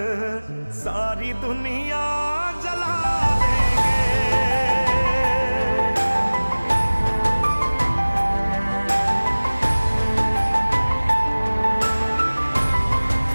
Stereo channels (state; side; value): inverted; both; correlation -1.00